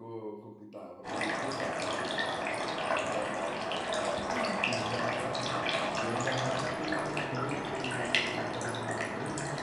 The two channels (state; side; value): identical; both; correlation 1.00